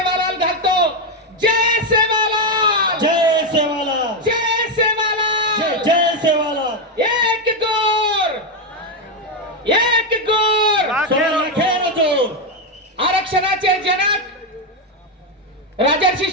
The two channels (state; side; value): normal; both; correlation 0.06